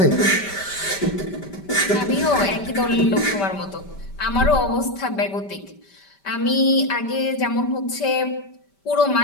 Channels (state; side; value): late; right; 5.1 ms